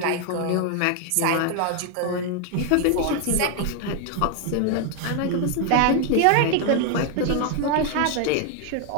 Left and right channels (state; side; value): different; both; correlation 0.00